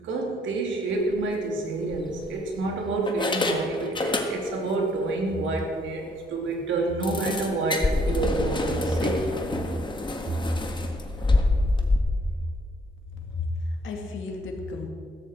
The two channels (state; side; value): normal; both; correlation 0.65